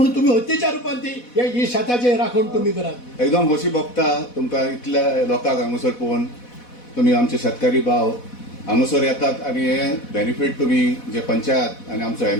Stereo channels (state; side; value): late; right; 4.1 ms